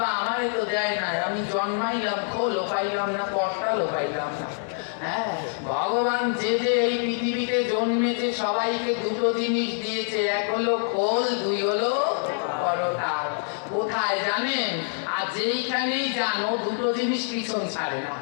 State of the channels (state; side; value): silent; right; 61 dB below the other